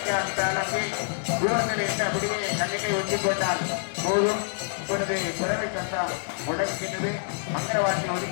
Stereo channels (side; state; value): right; silent; 60 dB below the other